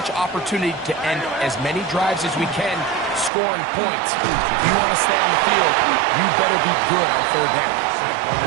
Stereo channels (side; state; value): left; drops out; at 3.3 s